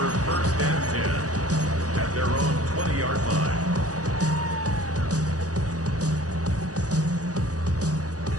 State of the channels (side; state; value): left; late; 0.67 ms